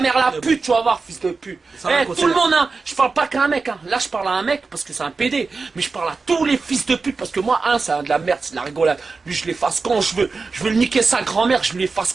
la pute, tu vas voir, fils de pute. Tout le monde, hein. Je parle pas qu'à un mec, hein. Là je parle à un mec parce que c'est un PD. Mais je parle à tous les fils de pute parce que moi, c'est de la merde, c'est de la rigolade. Lui je l'efface quand je veux. Je veux le niquer sa grand-mère, je l'efface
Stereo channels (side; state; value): left; quieter; 4.3 dB